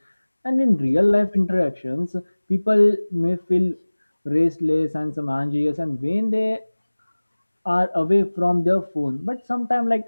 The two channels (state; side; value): inverted; both; correlation -1.00